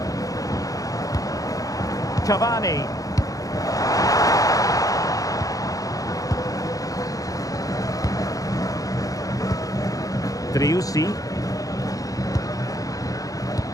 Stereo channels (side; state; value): right; late; 0.17 ms